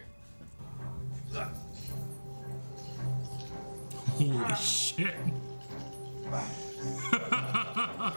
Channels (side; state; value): both; inverted; correlation -1.00